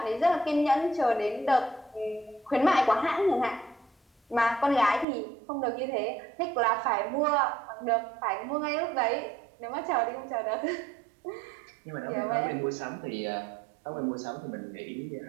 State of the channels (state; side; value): drops out; left; at 5.1 s